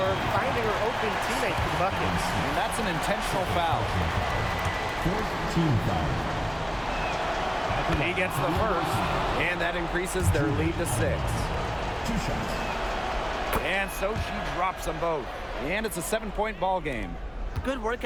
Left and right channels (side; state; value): both; identical; correlation 1.00